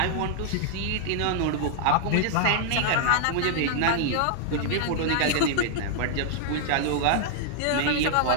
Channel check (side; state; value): both; different; correlation 0.00